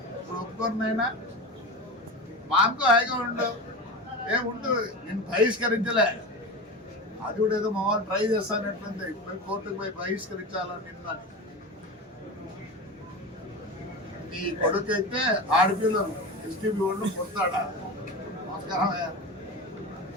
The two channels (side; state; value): both; normal; correlation 0.26